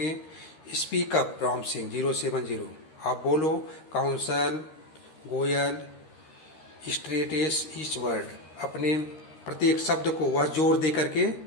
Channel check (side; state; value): right; late; 13 ms